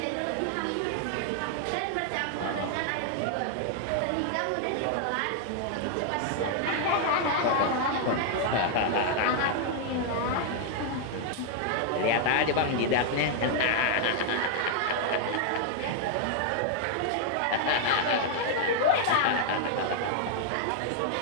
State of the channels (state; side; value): different; both; correlation 0.00